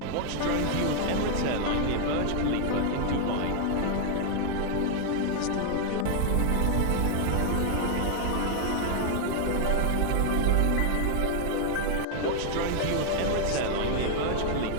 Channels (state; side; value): different; both; correlation 0.00